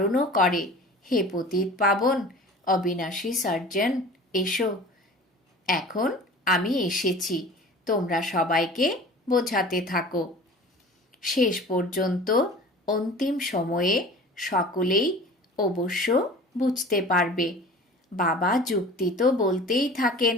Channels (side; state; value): both; normal; correlation 0.41